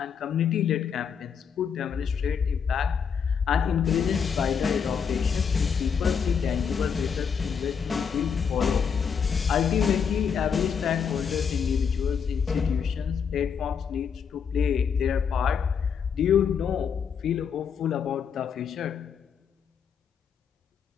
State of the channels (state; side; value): quieter; right; 6.8 dB